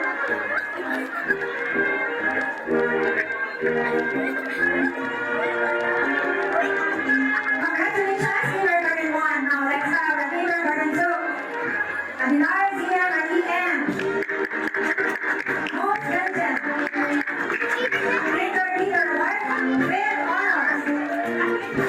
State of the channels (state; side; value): identical; both; correlation 1.00